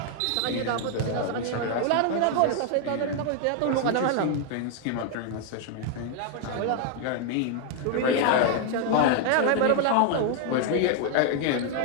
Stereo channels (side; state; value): both; different; correlation 0.00